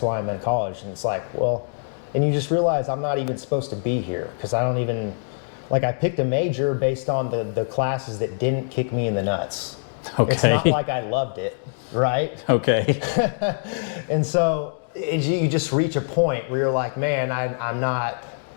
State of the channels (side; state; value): right; silent; digital silence